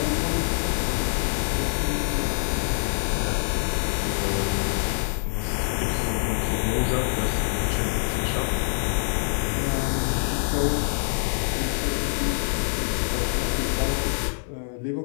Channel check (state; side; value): silent; right; 56 dB below the other